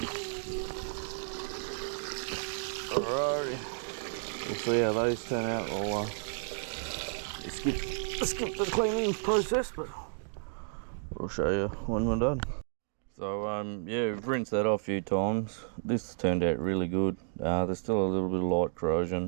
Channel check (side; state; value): left; silent; 56 dB below the other